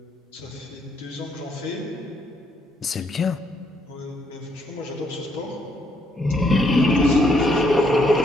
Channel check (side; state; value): both; normal; correlation 0.72